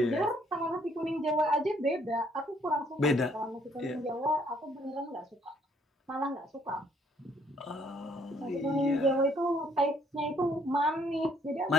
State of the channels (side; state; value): both; normal; correlation 0.65